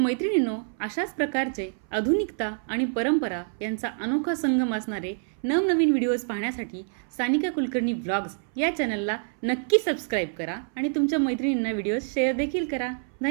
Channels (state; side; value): silent; left; 60 dB below the other